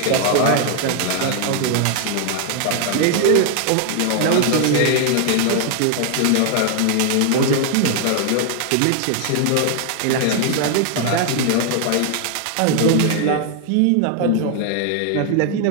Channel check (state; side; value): different; both; correlation 0.00